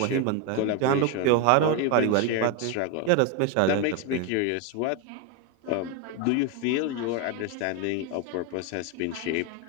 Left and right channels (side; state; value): both; different; correlation 0.02